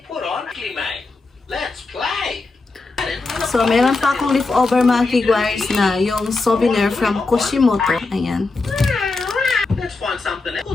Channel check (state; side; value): quieter; right; 3.7 dB